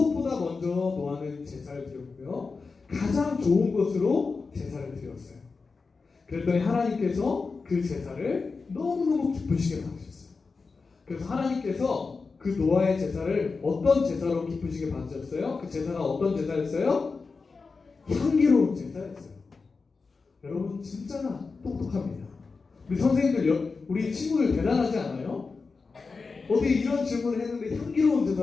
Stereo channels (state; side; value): quieter; right; 4.4 dB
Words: 먼저 노아는 제사를 드렸고요. 가장 좋은 것으로 제사를 드렸어요. 그랬더니 하나님께서 그 제사를 너무너무 기쁘시게 받으셨어요. 그래서 하나님께서 그 노아의 제사를 어떤 제사로 기쁘시게 받으셨어요? 그 제사가 어떤 제사였어요? 향기로운 제사였어요. 여러분 진짜 똑똑합니다. 우리 선생님들, 우리 친구들 대단하지 않아요? 어떻게 이런 질문을 했는데 향기로운